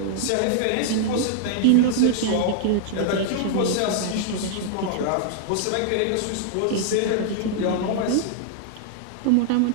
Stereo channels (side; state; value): both; different; correlation -0.01